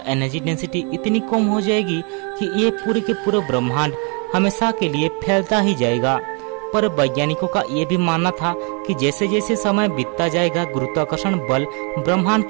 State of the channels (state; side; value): quieter; left; 34.3 dB